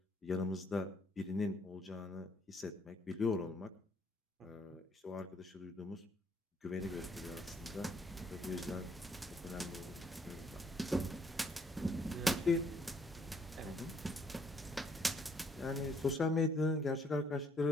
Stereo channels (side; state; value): both; normal; correlation 0.67